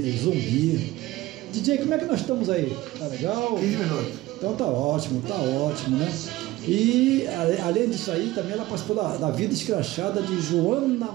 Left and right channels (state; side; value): quieter; left; 17.7 dB